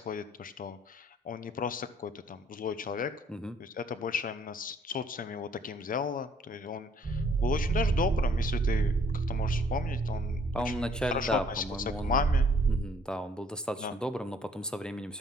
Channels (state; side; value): normal; both; correlation 0.61